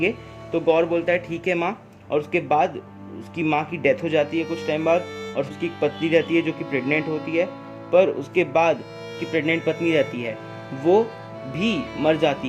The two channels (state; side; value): identical; both; correlation 1.00